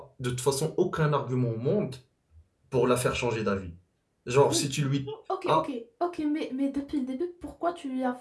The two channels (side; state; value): both; identical; correlation 1.00